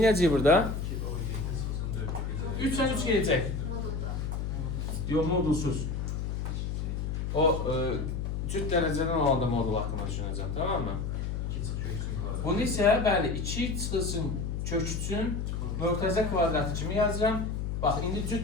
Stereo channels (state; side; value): noise; left; hum, 2 dB below the sound